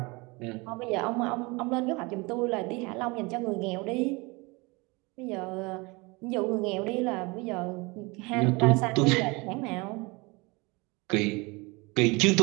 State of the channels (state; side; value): quieter; left; 26.1 dB